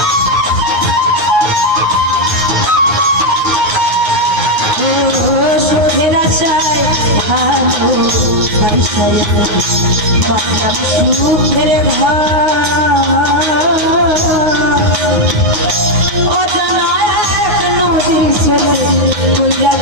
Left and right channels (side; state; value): left; late; 9.5 ms